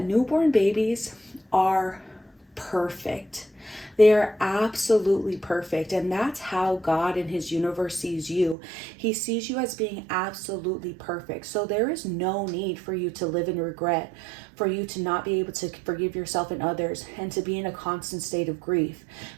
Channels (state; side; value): drops out; left; at 8.6 s